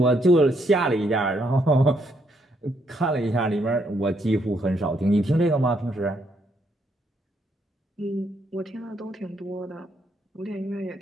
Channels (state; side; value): normal; both; correlation 0.74